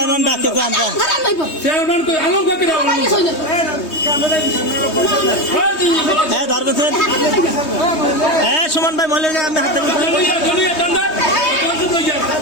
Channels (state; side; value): late; right; 3.2 ms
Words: ডাকে যান হ্যাঁ ধরবেন হ্যাঁ সুমন ভাই মহিলা আমি হাতে